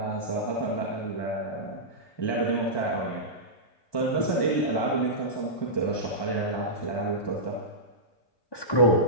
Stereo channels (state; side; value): late; right; 1.2 ms